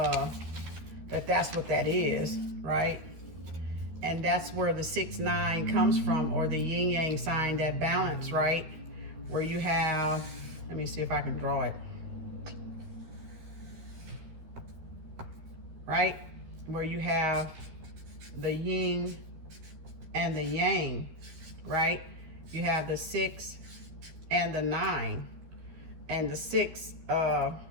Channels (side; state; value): left; late; 13 ms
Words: That's what that is, right? And that's where the 6-9 comes from, or the yin yang sign, that balance, right? Where you have, let me see if I can draw it. Right? Where you have the yin and the yang, right? You have the 6 and the 9. And the 6